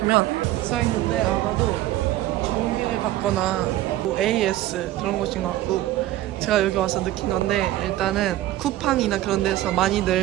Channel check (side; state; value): left; quieter; 14.7 dB